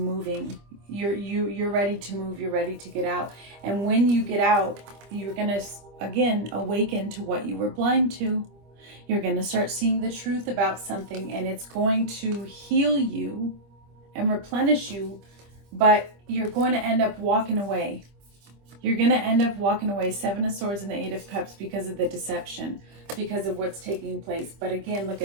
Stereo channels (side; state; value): left; late; 25 ms